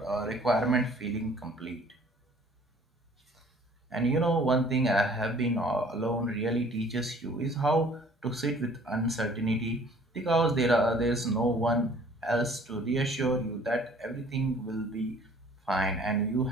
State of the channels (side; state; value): both; normal; correlation 0.54